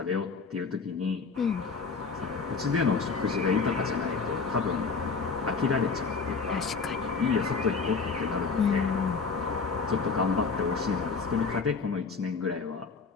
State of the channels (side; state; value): right; quieter; 4.8 dB